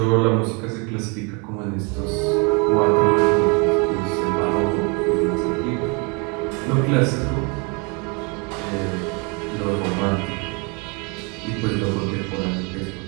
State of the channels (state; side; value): quieter; left; 32.0 dB